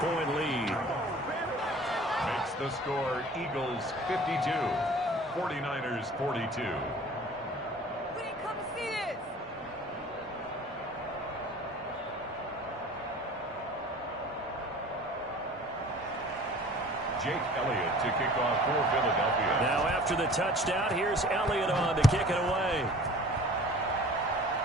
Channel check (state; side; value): normal; both; correlation 0.46